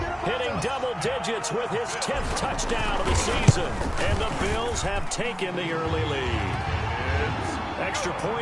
hitting double digits with his 10th touchdown of the season. And the Bills have taken the early lead. Extra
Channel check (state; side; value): identical; both; correlation 1.00